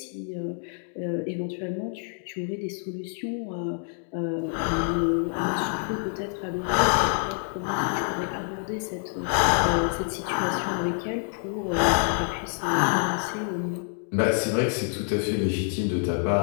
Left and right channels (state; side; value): silent; right; 55 dB below the other